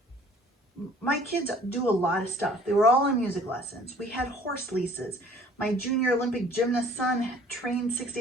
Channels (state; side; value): normal; both; correlation 0.53